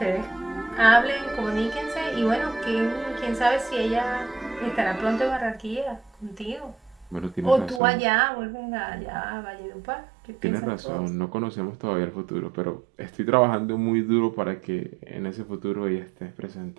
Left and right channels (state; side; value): drops out; left; at 7.8 s